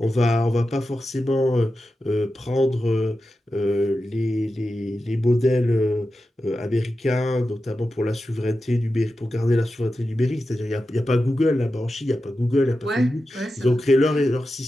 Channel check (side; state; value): both; normal; correlation 0.91